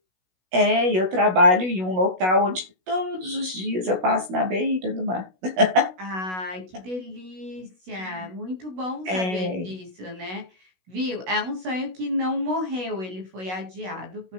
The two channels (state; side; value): late; left; 16 ms